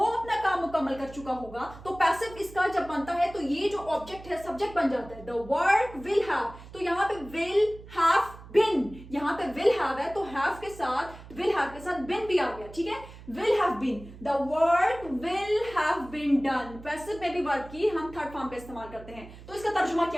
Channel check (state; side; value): noise; right; hum, 17 dB below the sound